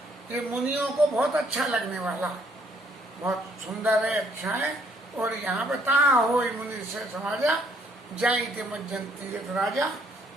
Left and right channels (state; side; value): normal; both; correlation 0.66